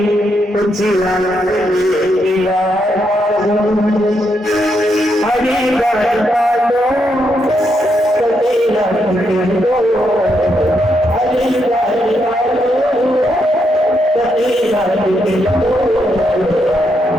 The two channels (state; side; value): normal; both; correlation 0.79